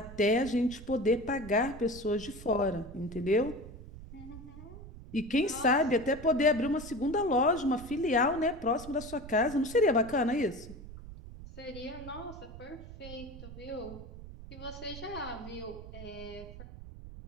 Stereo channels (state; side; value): noise; right; rumble, 14 dB below the sound